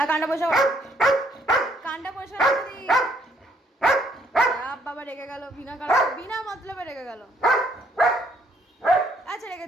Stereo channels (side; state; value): both; normal; correlation 0.67